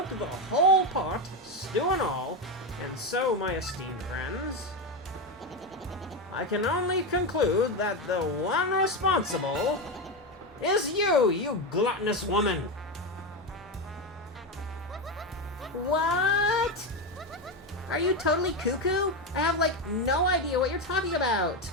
the whole pot, stew and all, and so, my esteemed friends, I can only conclude that the one responsible is you, you gluttonous woman. What? Are you totally cuckoo? I have, no idea what you're talking about.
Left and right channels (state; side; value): normal; both; correlation 0.13